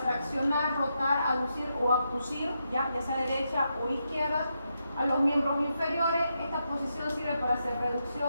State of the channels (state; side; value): inverted; both; correlation -0.83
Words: rotar, aducir o abducir, ya sea derecha o izquierda. a los miembros inferiores. Esta posición sirve para hacer